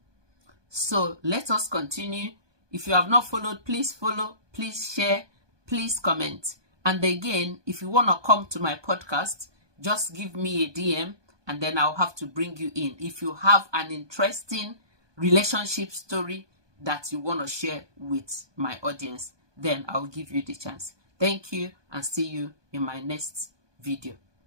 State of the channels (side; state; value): left; late; 1.2 ms